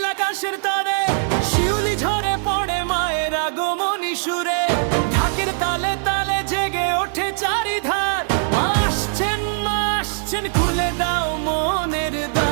আকাশের তারে, শিউলি ঝরে পড়ে মায়ের আগমনী সুরে। ঢাকের তালে তালে জেগে ওঠে চারিধার, মা আসছেন খুলে দাও মনের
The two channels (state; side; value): silent; left; digital silence